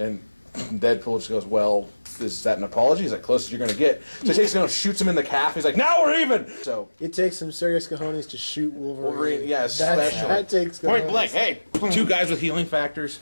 Deadpool just goes, "Well, is that an apology? Is that close as you're going to get?" So he takes him and shoots him in the calf. He's like, "Now we're even!" So It takes some serious cojones to shoot Wolverine. yeah, especially. That takes cojones. Point blank. Hey. Two guys with healing factors.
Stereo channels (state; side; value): inverted; both; correlation -1.00